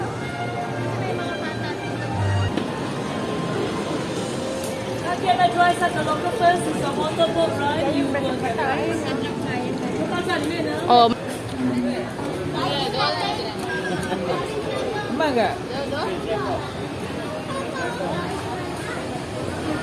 guys at the local first is a motorboat ride. You will get Oh, Mangga.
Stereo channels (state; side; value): identical; both; correlation 1.00